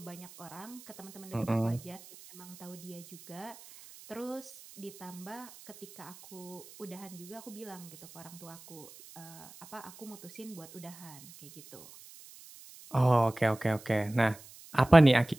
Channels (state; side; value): noise; right; hiss, 19 dB below the sound